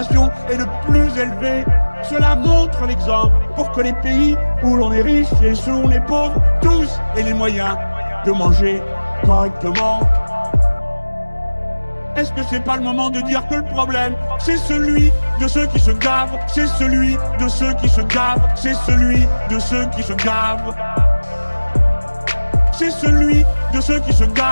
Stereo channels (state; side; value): inverted; both; correlation -1.00